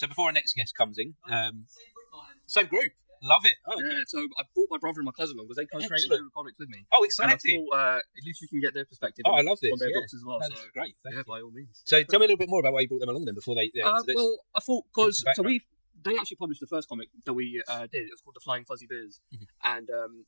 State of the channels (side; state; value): both; inverted; correlation -1.00